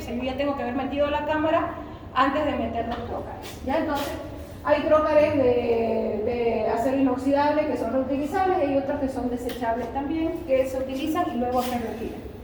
sea, yo ya tengo que haber metido la cámara antes de meter los trócares, ¿ya? Entonces, hay trócares de acero inoxidable que son reutilizables y hay otros que son desechables también, que se utilizan y luego se retiran.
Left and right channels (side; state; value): both; identical; correlation 1.00